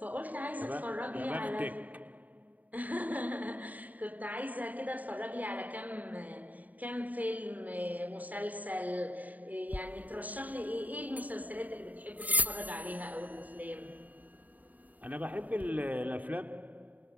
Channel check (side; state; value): left; late; 0.077 ms